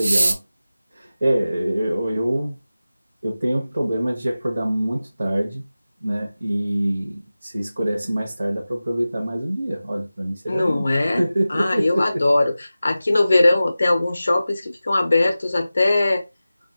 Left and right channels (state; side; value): inverted; both; correlation -0.95